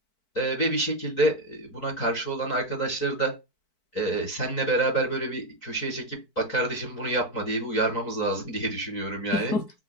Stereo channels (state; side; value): late; right; 4.6 ms